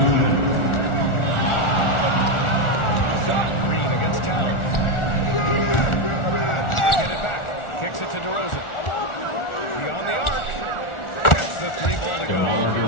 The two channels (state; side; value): late; right; 1.4 ms